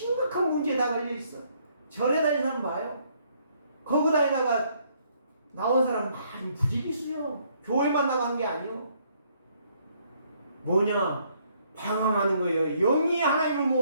문제에 다 걸려있어. 절에 다니는 사람 봐요. 거기 다니다가 나온 사람 많이 부지기수요. 교회만 나간 게 아니요. 뭐냐? 방황하는 거예요. 영이 하나님을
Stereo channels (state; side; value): inverted; both; correlation -0.68